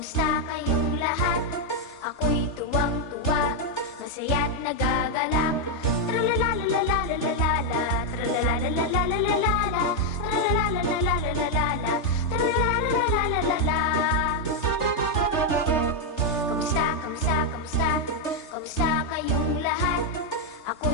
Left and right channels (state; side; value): late; right; 3.3 ms